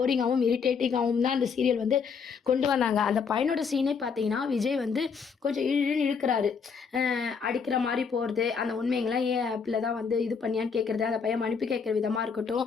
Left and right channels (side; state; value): right; quieter; 5.9 dB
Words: இரிட்டேட்டிங்காவும் தான் அந்த சீரியல் வந்து கொண்டு வந்தாங்க. அந்த பையனோட சீனே பார்த்தீங்கன்னா, விஜய் வந்து கொஞ்சம் இழு இழுன்னு இழுக்குறாரு. அடிக்கிற மாரி போறது, அந்த உண்மைங்கலாம் ஏன் ஆப்ல தான் வந்து இது பண்ணியான்னு கேட்கறது, அந்த பையன் மன்னிப்பு கேட்கிற விதமா இருக்கட்டும்,